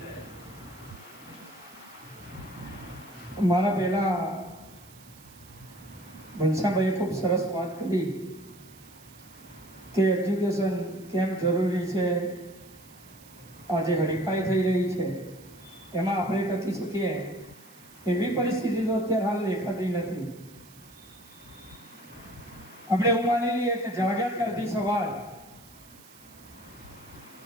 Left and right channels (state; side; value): noise; right; hiss, 22 dB below the sound